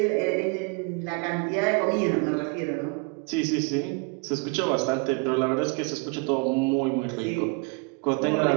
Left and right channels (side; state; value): left; quieter; 31.2 dB